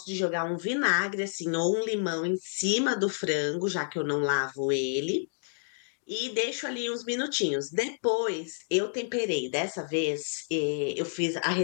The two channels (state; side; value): silent; right; digital silence